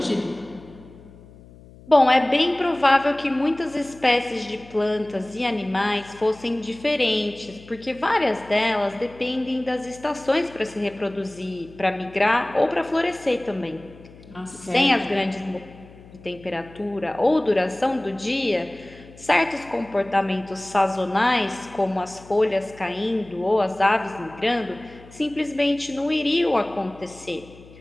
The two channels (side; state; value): left; noise; hum, 21 dB below the sound